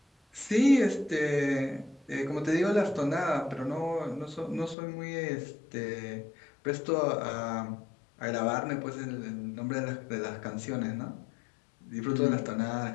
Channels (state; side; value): drops out; right; at 4.8 s